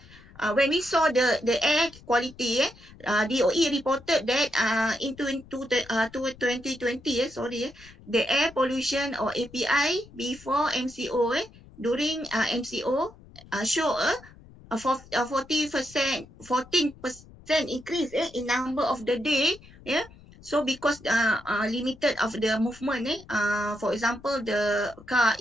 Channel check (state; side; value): noise; left; rumble, 22 dB below the sound